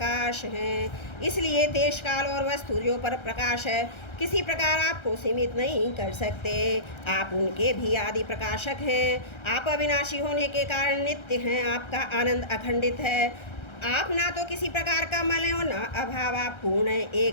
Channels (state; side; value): late; right; 1.3 ms